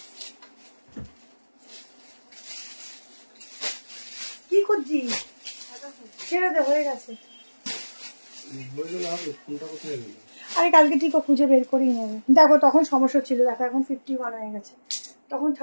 কি খুঁজছিস? ছেড়ে দে, হয়ে গেছে। আরে কালকে ঠিক খুঁজে বের করেই নেবে। দেখো তখন সমস্যা ছিল, দেখো এখন 51 হয়ে গেছে, তখন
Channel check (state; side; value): inverted; both; correlation -1.00